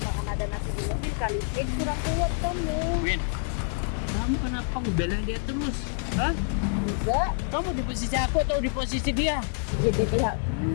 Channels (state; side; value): silent; right; 60 dB below the other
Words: karena ada nasi di mobil kali. Kurang kuat kamu. Win, kamu kenapa ngebelain dia terus? Hah? Enggak. Kamu di posisi aku atau di posisi dia? Jadi pihak